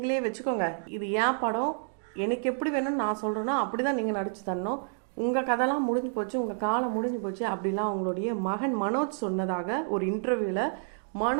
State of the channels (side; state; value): left; silent; digital silence